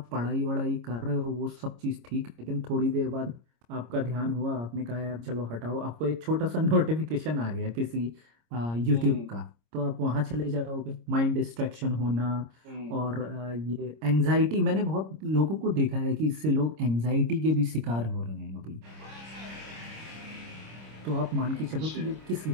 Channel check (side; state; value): left; late; 26 ms